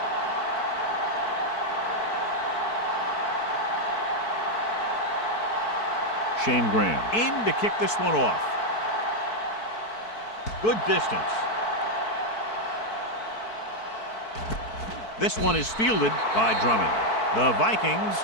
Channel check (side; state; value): right; late; 4.6 ms